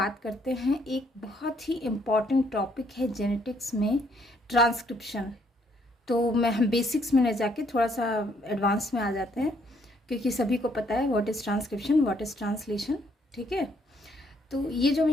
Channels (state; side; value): normal; both; correlation 0.68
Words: करते हैं एक बहुत ही इम्पॉर्टेंट टॉपिक है जेनेटिक्स में, ट्रांसक्रिप्शन। तो हम बेसिक्स में न जाके थोड़ा सा एडवांस में आ जाते हैं, क्योंकि सभी को पता है what is transcription, what is translation. ठीक है, तो ये जो मैं